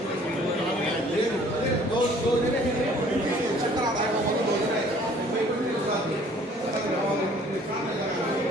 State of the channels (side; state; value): both; normal; correlation 0.55